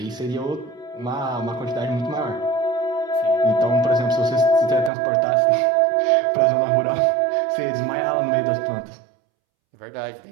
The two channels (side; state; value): left; drops out; at 4.9 s